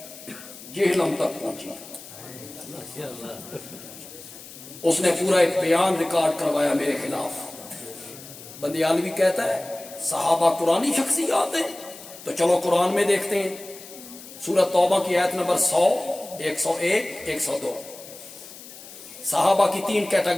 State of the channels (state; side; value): noise; left; hiss, 16 dB below the sound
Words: جہنم تک پہنچی۔ اس نے پورا ایک بیان ریکارڈ کروایا میرے خلاف۔ بندیالوی کہتا ہے صحابہ قرآنی شخصیات ہیں، تو چلو قرآن میں دیکھتے ہیں، سورۃ توبہ کی آیت نمبر 100، 101، 102، صحابہ کی 3